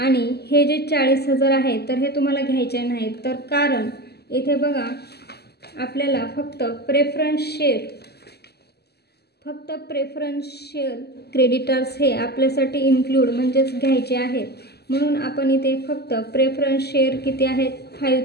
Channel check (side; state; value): right; late; 0.47 ms